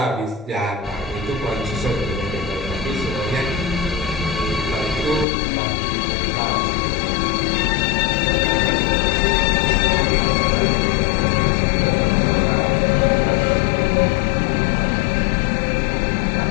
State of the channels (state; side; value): drops out; right; at 5.2 s